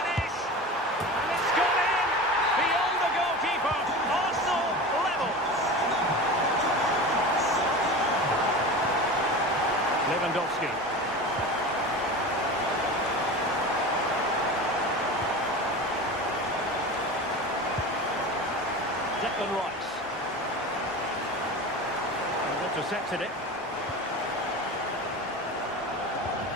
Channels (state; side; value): normal; both; correlation 0.31